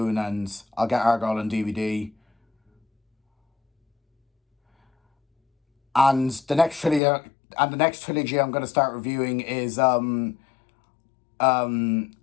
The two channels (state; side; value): drops out; right; at 7.0 s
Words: and I'll get Argyle on DVD. And the next trilogy I'm going to start reviewing is the